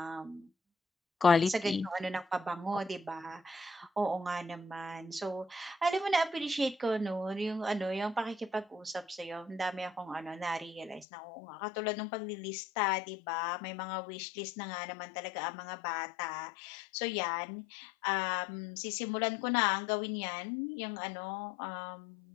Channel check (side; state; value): right; drops out; at 11.1 s